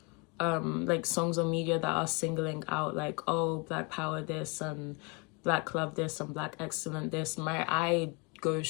songs on media that are singling out, like, oh, black power this and black love this and black excellent this, my eye goes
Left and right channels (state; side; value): quieter; right; 31.5 dB